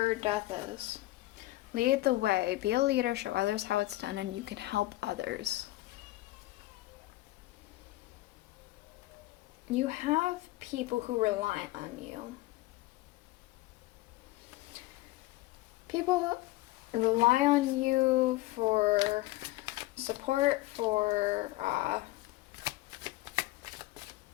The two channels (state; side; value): quieter; right; 18.3 dB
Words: death is. Lead the way. Be a leader, show others how it's done, and you can help others. You have people who rely on you. People rely on you for support, for